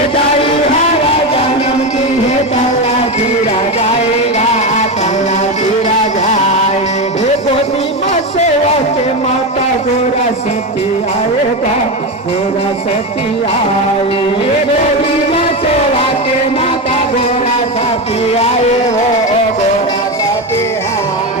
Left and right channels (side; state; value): both; normal; correlation 0.16